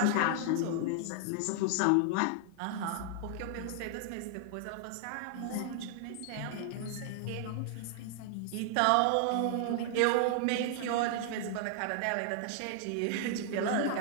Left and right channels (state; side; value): different; both; correlation 0.00